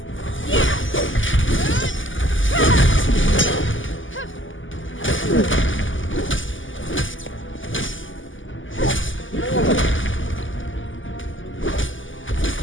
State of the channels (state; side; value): late; right; 0.57 ms